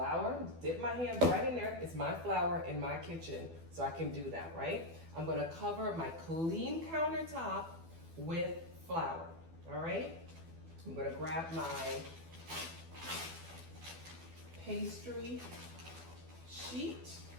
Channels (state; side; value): late; left; 12 ms